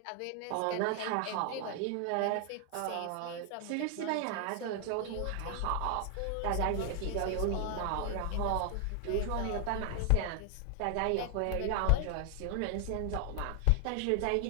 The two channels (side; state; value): both; different; correlation 0.00